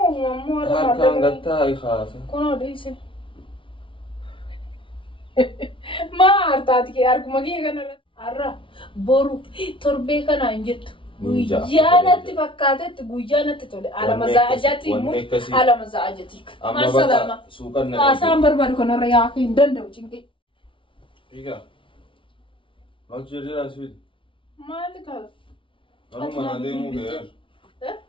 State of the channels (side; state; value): right; late; 0.25 ms